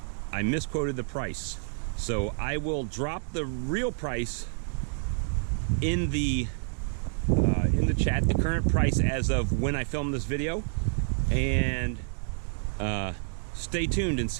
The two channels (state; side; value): silent; left; digital silence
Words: I misquoted the price. So I will drop the real price in the chat, the current price as of when I filmed this video. And stay tuned and